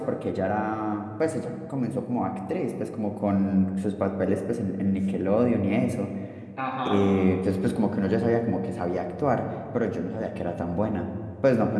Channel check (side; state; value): both; identical; correlation 1.00